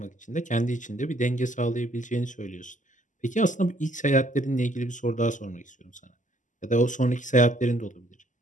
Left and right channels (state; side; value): late; right; 0.37 ms